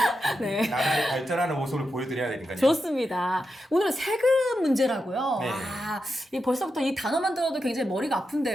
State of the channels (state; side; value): normal; both; correlation 0.88